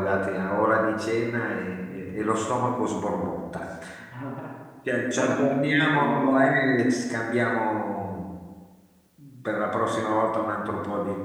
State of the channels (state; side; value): identical; both; correlation 1.00